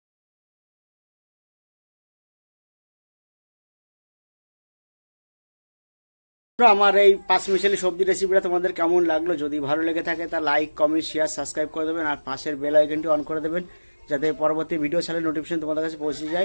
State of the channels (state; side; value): inverted; both; correlation -1.00